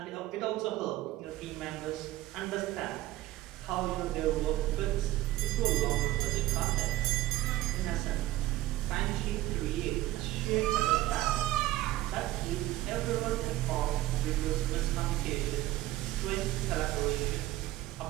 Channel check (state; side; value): quieter; left; 15.8 dB